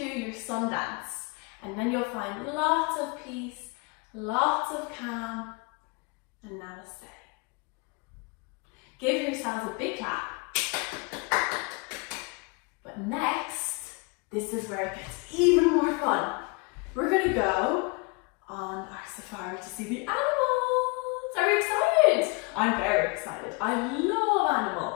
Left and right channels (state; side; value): quieter; right; 30.1 dB